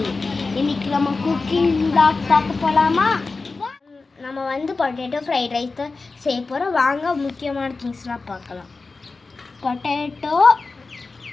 இன்னைக்கு நம்ம குக்கிங் vlog பார்க்க போலாமா? நம்ம வந்து பொட்டேட்டோ ஃப்ரைட் ரைஸ் செய்ய போறோம். வாங்க முக்கியமான திங்ஸ்லாம் பார்க்கலாம். பொட்டேட்டோ,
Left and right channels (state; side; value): quieter; right; 3.9 dB